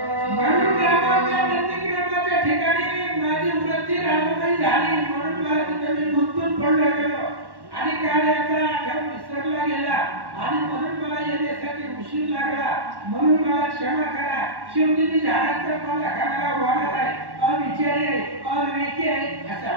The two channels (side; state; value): left; late; 1.1 ms